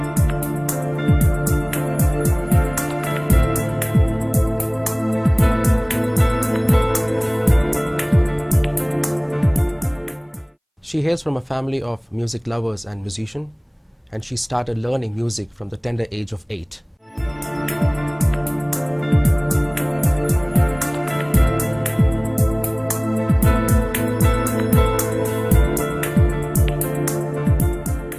She hails from a family of music lovers and musicians, and she started learning music from the tender age of 8.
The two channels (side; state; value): both; identical; correlation 1.00